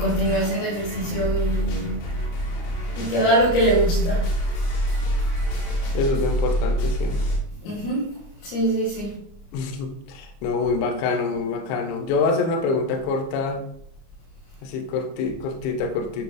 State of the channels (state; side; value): late; right; 29 ms